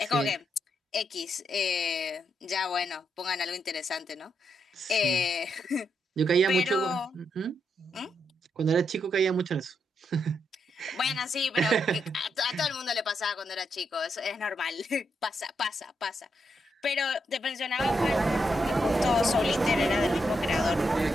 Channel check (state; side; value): normal; both; correlation 0.81